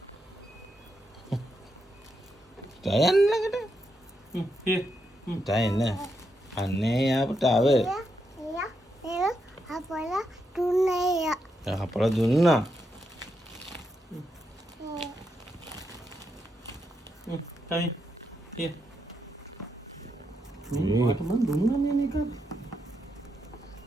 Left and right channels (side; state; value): both; normal; correlation 0.82